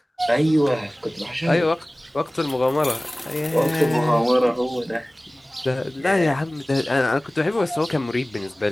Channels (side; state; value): both; normal; correlation 0.98